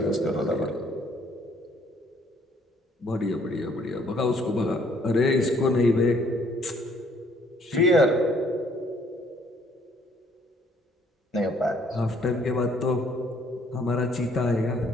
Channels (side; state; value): both; normal; correlation 0.63